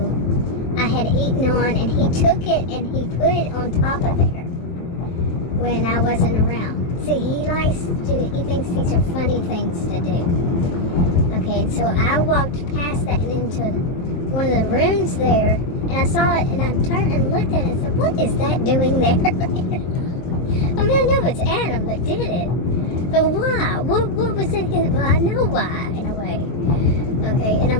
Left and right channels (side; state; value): right; late; 23 ms